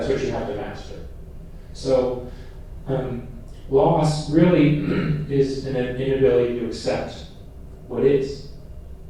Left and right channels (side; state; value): both; identical; correlation 1.00